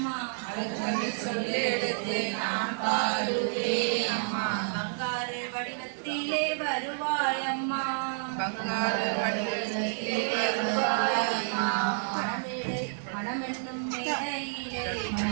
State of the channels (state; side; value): silent; left; digital silence